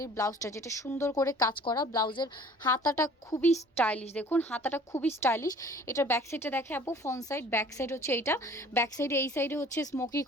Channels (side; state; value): both; normal; correlation 0.50